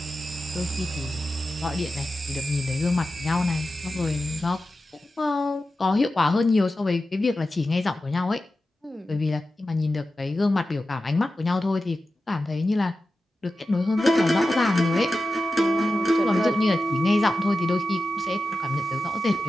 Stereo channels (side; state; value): both; normal; correlation 0.93